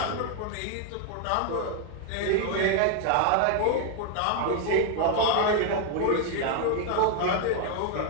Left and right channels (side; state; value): both; different; correlation 0.00